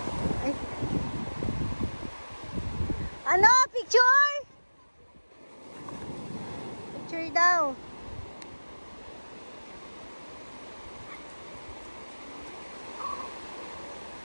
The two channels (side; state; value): both; inverted; correlation -1.00